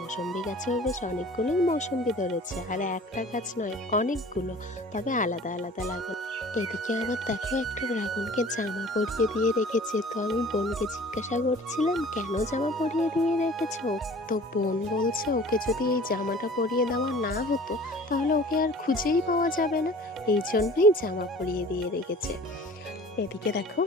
গাছেও বেশ অনেকগুলোই মৌসম্বি ধরেছে, আর একটা গাছ নয়, অনেকগুলো, তবে আলাদা আলাদা লাগানো। এদিকে আবার দেখো একটা ড্রাগনকে জামা পরিয়ে দিয়ে রেখেছে। তো আমি বোনকে জিজ্ঞাসা করছিলাম কেন জামা পরিয়ে দিয়ে রেখেছো। তো বোন বলছে ওকে যদি এই জামাটা পরিয়ে দেওয়া না হতো তাহলে ওকে আর খুঁজেই পাওয়া যাবে না, এই জন্যই জামা পরিয়ে দিয়ে রেখেছে। এদিকে দেখো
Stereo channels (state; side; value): normal; both; correlation 0.46